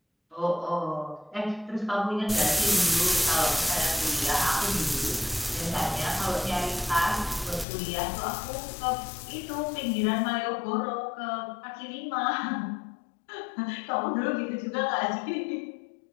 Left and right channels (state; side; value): drops out; right; at 7.7 s